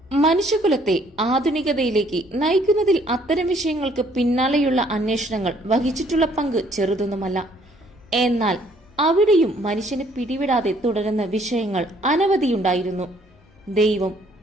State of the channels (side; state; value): both; normal; correlation 0.63